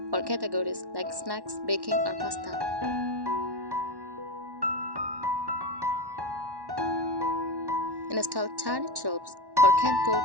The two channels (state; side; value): late; left; 1.1 ms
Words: for categories like snacks, baking, or pasta. Install tiered shelves for canned